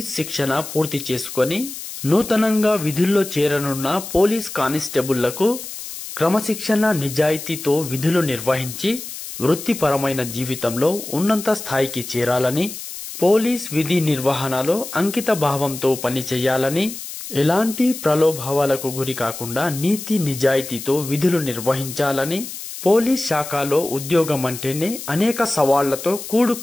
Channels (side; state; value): left; noise; hiss, 10 dB below the sound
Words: శిక్షణ పూర్తి చేసుకొని నూతనంగా విధుల్లో చేరనున్న పోలీస్ కానిస్టేబుళ్లకు క్రమశిక్షణ నిజాయితీతో విధులు నిర్వహించి వృత్తిపరమైన జీవితంలో ఉన్నత స్థాయికి చేరాలని, పోలీస్ విధి నిర్వహణలో అంకిత భావంతో పనిచేయాలని, ఎలాంటి ప్రలోభాలకు గురి కాకుండా నీతి నిజాయితీతో విధులు నిర్వహించాలని, పోలీస్ శాఖలో ఉద్యోగం అంటేనే అనేక సవాళ్లతో